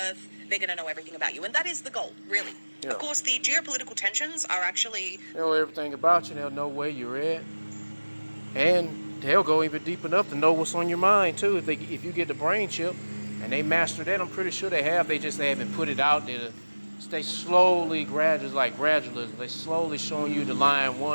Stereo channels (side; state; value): both; inverted; correlation -1.00